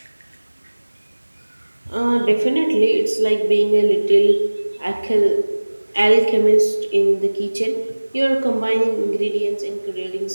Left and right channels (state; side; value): inverted; both; correlation -1.00